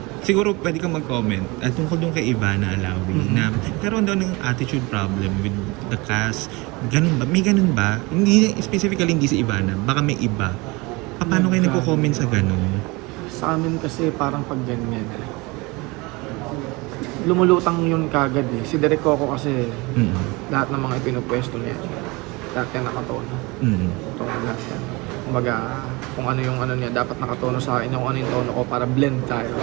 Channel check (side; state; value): left; quieter; 25.0 dB